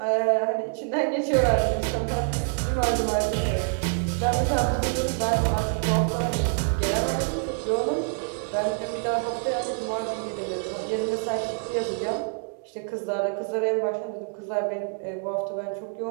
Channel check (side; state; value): left; silent; 57 dB below the other